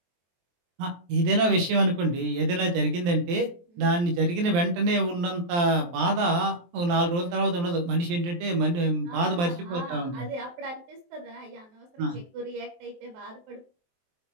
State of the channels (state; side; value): late; left; 23 ms